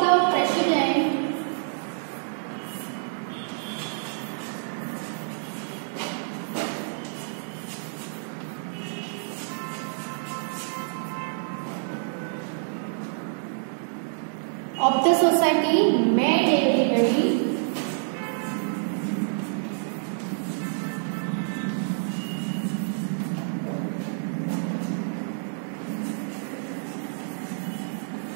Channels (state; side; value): silent; left; 60 dB below the other